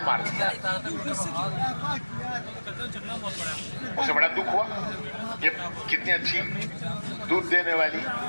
मार दिया। उसे बड़ा दुख हुआ, ये कितनी अच्छी दूध देने वाली,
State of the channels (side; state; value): both; inverted; correlation -1.00